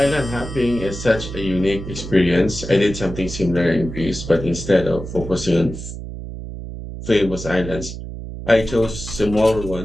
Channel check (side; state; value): right; noise; hum, 9 dB below the sound